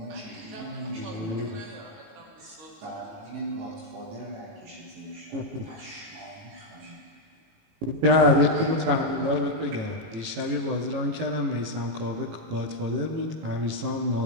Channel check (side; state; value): left; late; 18 ms